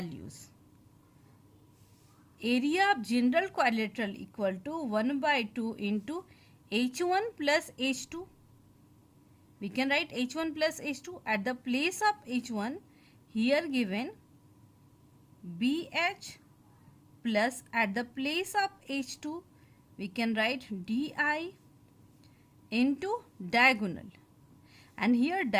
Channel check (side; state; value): both; identical; correlation 1.00